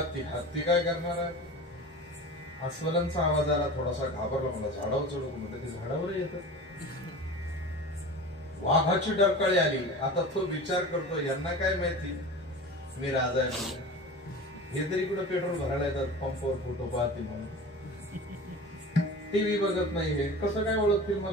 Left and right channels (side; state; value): both; normal; correlation 0.34